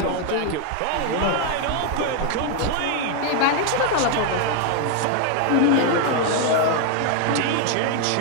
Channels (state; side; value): different; both; correlation 0.01